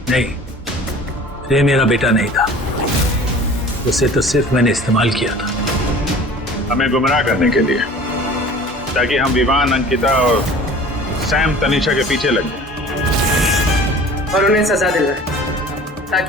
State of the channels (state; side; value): normal; both; correlation 0.44